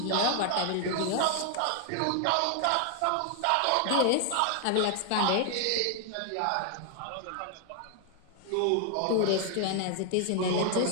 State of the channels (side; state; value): both; different; correlation 0.00